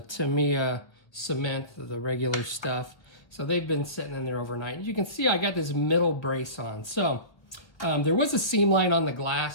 Tamiya cement, the regular stuff. So they've been sitting in there overnight. As you can see, I got this middle brace on. So there was a seam line on the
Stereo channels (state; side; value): late; right; 1.2 ms